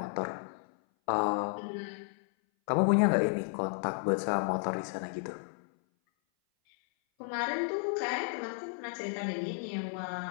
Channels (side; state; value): right; silent; 56 dB below the other